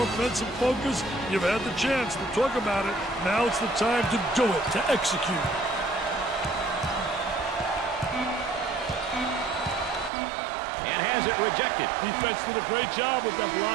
offensive focus, you've had the chance to talk about it. Now it's the time to do it, to execute. And has it rejected. Defense did a great job with that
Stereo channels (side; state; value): left; drops out; at 10.1 s